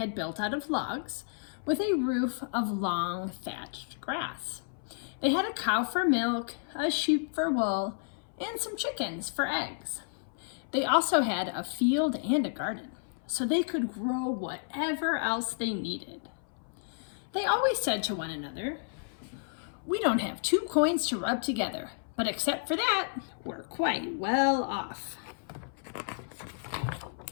built out of logs with a roof of long thatched grass. They had a cow for milk, a sheep for wool, and some chickens for eggs. They also had a field and a garden, so they could grow whatever else they needed. They always said to one another, "We don't have two coins to rub together, but except for that, we're quite well off."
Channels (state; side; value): silent; right; 57 dB below the other